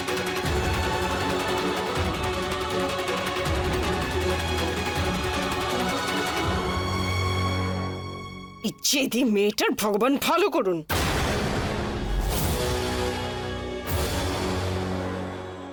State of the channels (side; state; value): both; identical; correlation 1.00